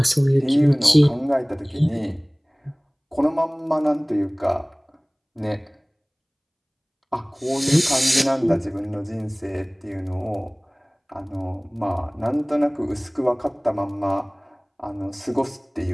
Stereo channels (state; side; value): identical; both; correlation 1.00